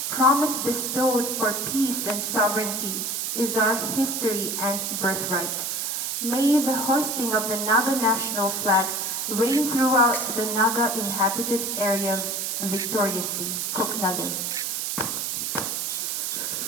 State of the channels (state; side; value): noise; right; hiss, 1 dB below the sound